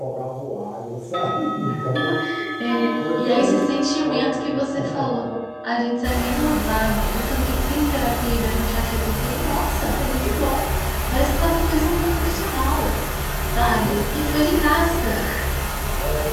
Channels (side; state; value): both; identical; correlation 1.00